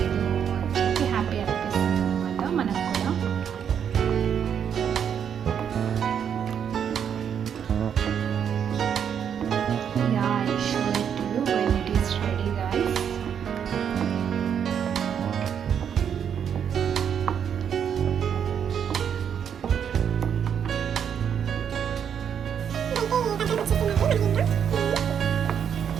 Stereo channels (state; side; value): quieter; left; 8.2 dB